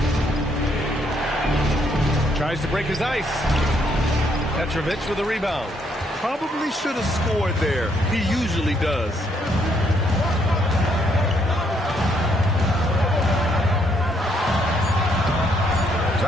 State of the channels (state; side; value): normal; both; correlation 0.71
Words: Tries to break his ice. Petrovic with a rebound. Probably should have scored there. He usually does.